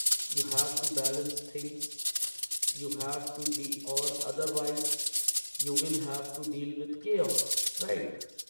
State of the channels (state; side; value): inverted; both; correlation -1.00